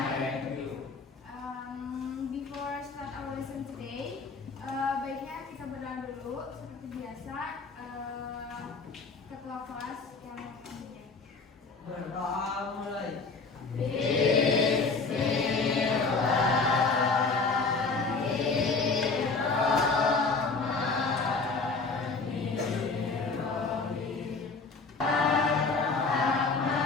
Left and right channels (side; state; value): right; quieter; 4.2 dB